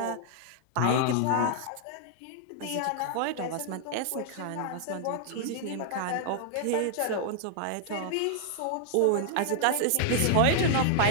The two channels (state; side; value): different; both; correlation -0.01